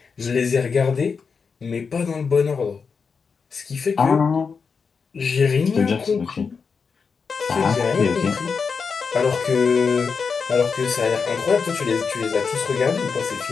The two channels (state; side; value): quieter; right; 5.5 dB